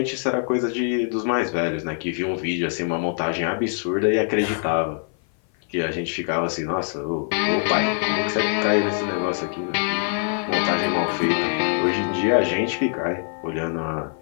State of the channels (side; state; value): right; silent; 56 dB below the other